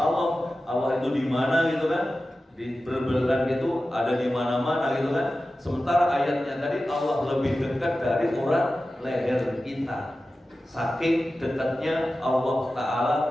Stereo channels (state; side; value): normal; both; correlation 0.94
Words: itu di mana gitu kan? Di berbelakang itu ada di mana-mana gitu kan? Sementara ayatnya tadi Allah lebih dekat dari urat leher kita. Saking dekatnya Allah Ta'ala